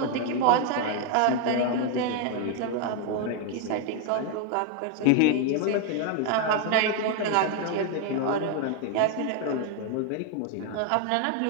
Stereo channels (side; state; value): both; different; correlation 0.01